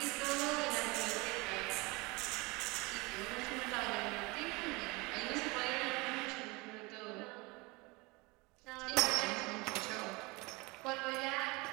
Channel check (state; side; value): quieter; left; 25.2 dB